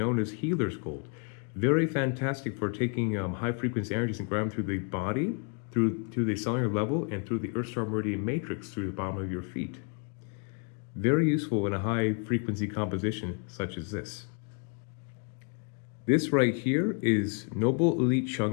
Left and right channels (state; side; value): quieter; right; 38.7 dB